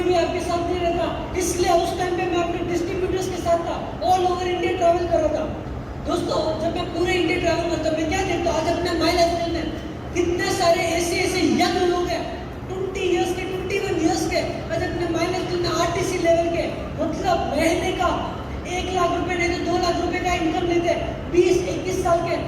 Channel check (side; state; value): both; identical; correlation 1.00